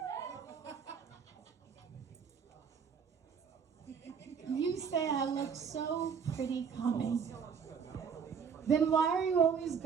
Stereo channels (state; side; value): quieter; left; 6.6 dB